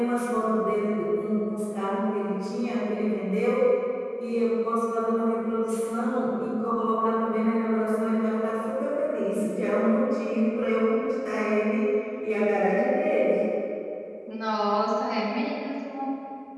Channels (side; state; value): both; identical; correlation 1.00